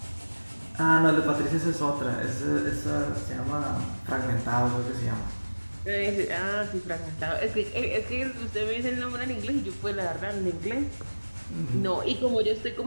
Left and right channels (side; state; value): both; inverted; correlation -1.00